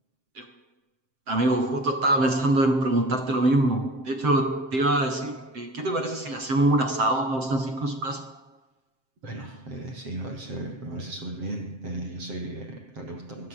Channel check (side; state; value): left; late; 7.6 ms